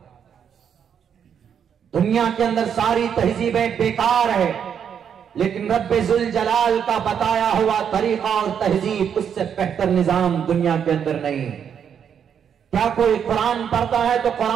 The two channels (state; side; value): quieter; left; 8.0 dB